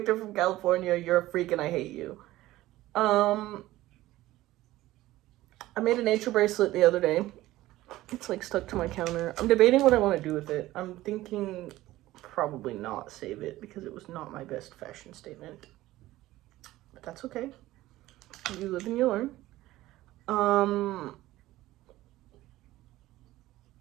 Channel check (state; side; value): quieter; left; 16.4 dB